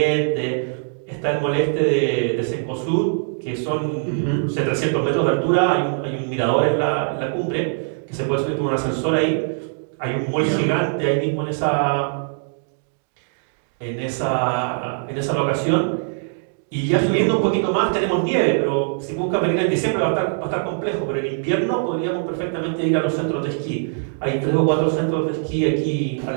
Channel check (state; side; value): silent; left; digital silence